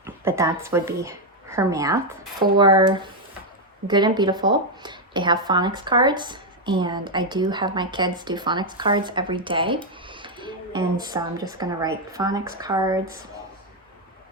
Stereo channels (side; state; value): both; normal; correlation 0.02